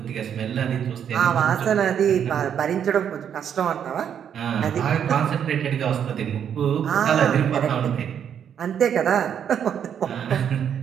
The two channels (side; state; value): left; quieter; 8.6 dB